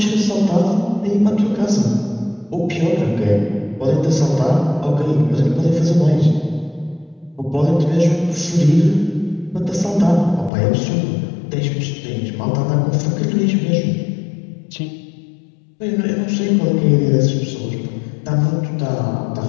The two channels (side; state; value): right; drops out; at 10.5 s